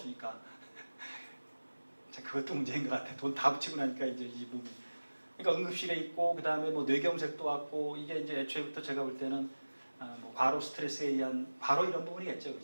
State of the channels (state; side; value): inverted; both; correlation -1.00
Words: 자, 그것도 문제인 것 같아. 돈 다 붙이고 나니까 이제 이 몸이. 그러니까 응급실에 있고 그 다음에 뭐 뇌경색도 왔고 이게 이제 애초에부터 제가 볼 때는 뭐 과로 스트레스에 의한 바로 이런 부분이겠죠,